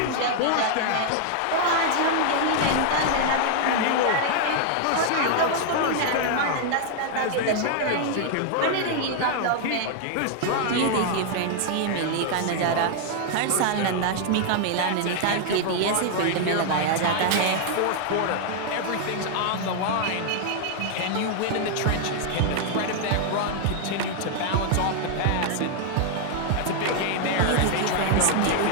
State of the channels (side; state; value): both; different; correlation 0.00